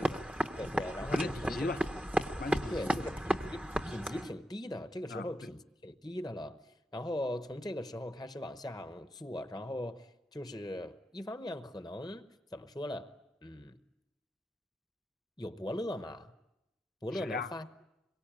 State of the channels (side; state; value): both; normal; correlation 0.86